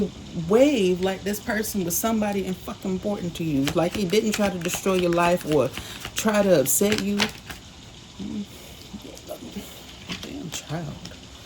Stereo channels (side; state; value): both; identical; correlation 1.00